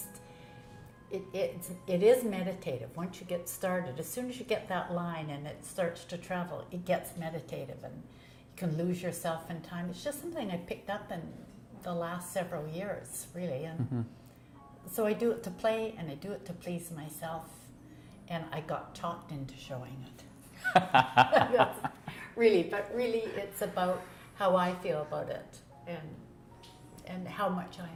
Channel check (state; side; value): identical; both; correlation 1.00